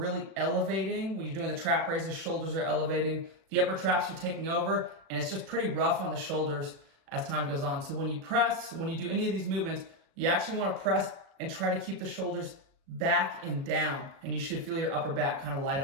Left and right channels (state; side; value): late; left; 37 ms